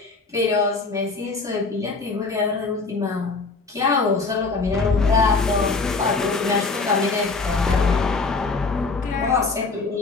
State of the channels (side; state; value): right; quieter; 4.0 dB